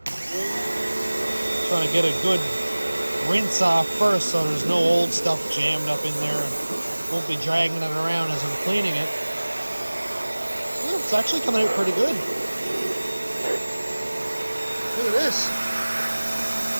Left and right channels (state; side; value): inverted; both; correlation -1.00